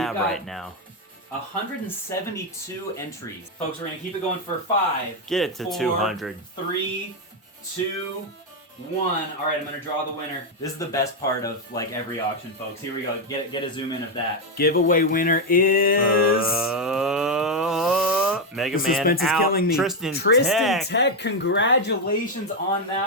got right now. 172 entries. Folks, we're going to keep it going for 5. Get it to 4, 200. 3, 2, 1. All right, I'm going to draw the winner. This is the best part of like every auction, folks. Here we go. Get a zoom in of that. Giveaway winner is... Mega the Man suspense is out. killing me. Tristan Tech. Tech. Congratulations on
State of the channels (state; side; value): normal; both; correlation 0.04